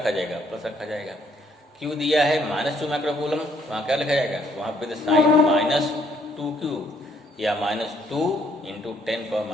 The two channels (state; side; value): normal; both; correlation 0.66